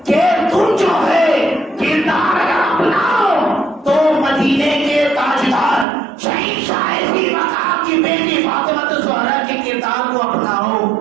کہ تم جو ہے کردار اگر اپناؤ تو مدینے کے تاجدار شہنشاہ ذی مقام کی بیٹی فاطمہ الزہرا کے کردار کو اپناؤ.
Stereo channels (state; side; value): drops out; left; at 5.9 s